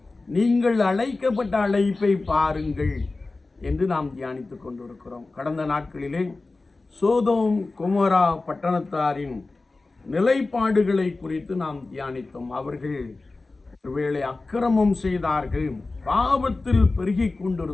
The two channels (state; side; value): quieter; right; 3.5 dB